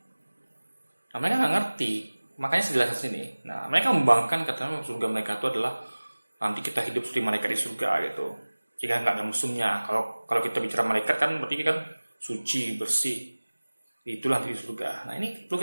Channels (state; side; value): inverted; both; correlation -1.00